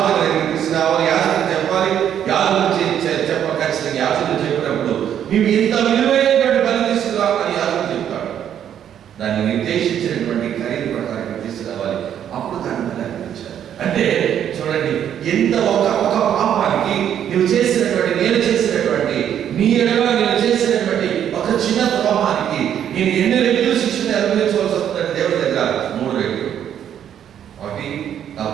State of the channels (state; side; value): quieter; left; 9.7 dB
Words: దగ్గరికి తీసుకురావాలి, యాజకులు చెప్పాలి, యాజకులు చెప్ప ఖచ్చితంగా యాజకులు చెప్పినప్పుడు నీవు ఇంత విలువైనటువంటి బలి తీసుకురా అని యాజకులు చెప్తాడు. దాన్ని నిర్దేశించినటువంటి ఖరీదు ప్రకారం తీసుకురావాలి, అప్పుడు దాన్ని బలి అర్పించాలి. అంటే చూడండి, ఎంత ఒక పాపానికి నువ్వు చేసినటువంటి, నేను చేసినటువంటి, నీ ఎడల నేను చేసినటువంటి ఒక చిన్న ద్రోహానికి నేను ఎన్ని రెట్లు శిక్షణ అనుభవించవలసి వస్తుందంటే దేవుడి దగ్గర 3 రెట్లు. ఒకటి